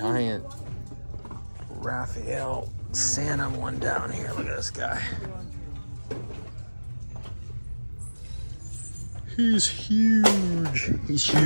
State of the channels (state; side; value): inverted; both; correlation -1.00